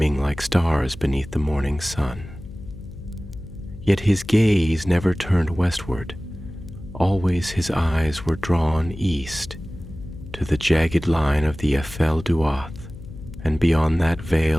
like stars beneath the morning sun. Yet his gaze never turned westward. Always his eyes were drawn east, to the jagged line of the Ephel Duath, and beyond that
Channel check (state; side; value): noise; left; hum, 15 dB below the sound